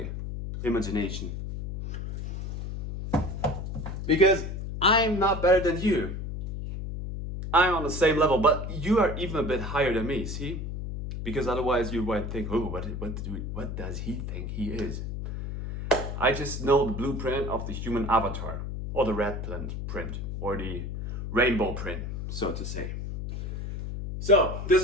imagination. Because I'm not better than you. I'm on the same level, but you are even a bit higher than me, see? Because otherwise you might think, oh, what does he think he is? I just know the blueprint of the human avatar, or the red print, or the rainbow print, so to say. So, this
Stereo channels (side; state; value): left; noise; hum, 5 dB below the sound